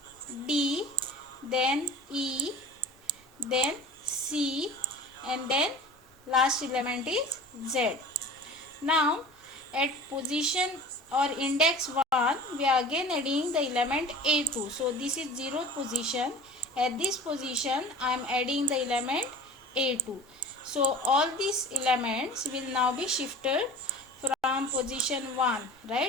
D, then E, then C, and then last element is Z. Now at position or index 1 we are again adding the element A2. So this is 0th position. At this position I am adding the element A2. So all these elements will now be shifted from position 1,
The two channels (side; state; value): both; normal; correlation 0.39